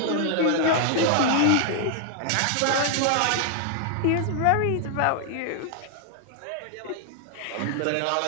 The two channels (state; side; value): different; both; correlation 0.00